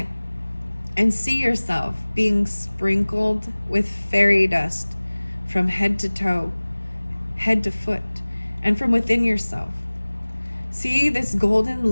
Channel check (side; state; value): both; inverted; correlation -1.00